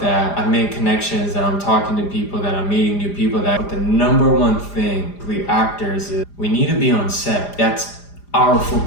I make connections, that I'm talking to people, that I'm meeting new people. But the number one thing with actors is we need to be on set. That's our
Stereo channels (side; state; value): right; late; 4.9 ms